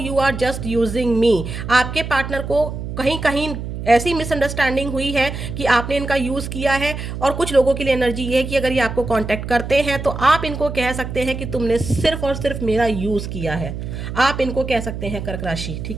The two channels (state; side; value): noise; right; hum, 7 dB below the sound